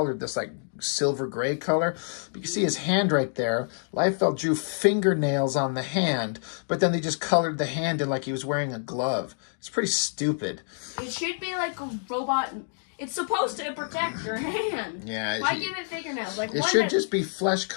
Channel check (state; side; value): silent; right; digital silence